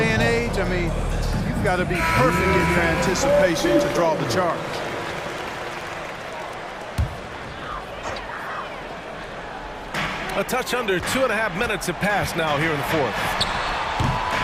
and age, I mean, you've got to be perfect in your anticipation to draw the charge. A touch under 2.5 minutes have passed now here in the fourth.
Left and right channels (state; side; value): identical; both; correlation 1.00